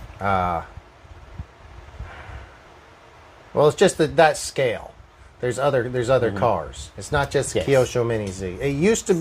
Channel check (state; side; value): identical; both; correlation 1.00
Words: well, it's just that scale. There's other cars. It's not just Yes. Kyosho Mini Z. It used to